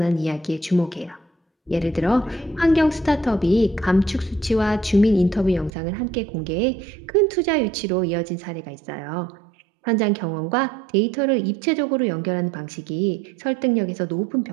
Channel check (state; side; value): drops out; left; at 5.7 s